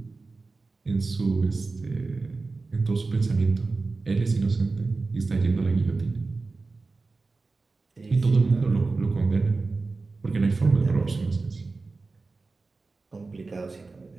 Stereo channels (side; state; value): left; quieter; 3.8 dB